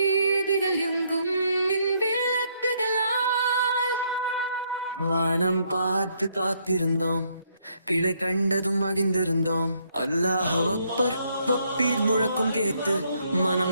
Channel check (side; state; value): both; inverted; correlation -0.72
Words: எங்கும் மின் விளக்குகளால் வானம் பார்த்து காத்திருந்தோம், பிழை கண்டதும் மகிழ்ந்திருந்தோம். அல்லாஹ் அக்பர் வப்பீர் முழக்கம் கேட்டு